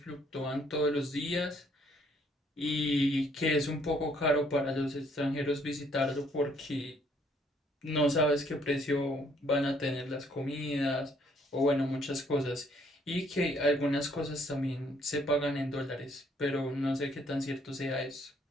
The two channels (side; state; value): both; normal; correlation 0.65